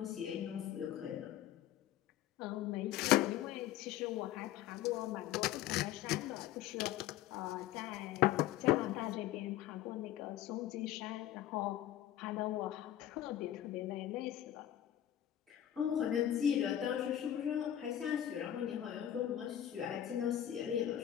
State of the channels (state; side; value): quieter; right; 11.9 dB